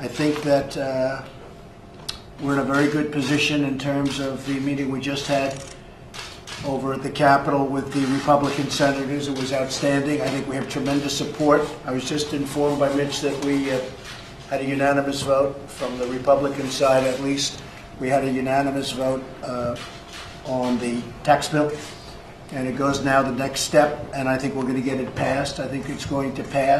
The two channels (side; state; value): both; identical; correlation 1.00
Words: think that we're in a very good position in terms of the meeting we just had over at the Capitol with the Republican senators. It was outstanding. I think we have tremendous support. I was just informed by Mitch that we had a unanimous vote from the Republican side, at least. We had a unanimous vote on the tax bill, and it goes now the next step, and I think we're going to get it passed. I think it's going to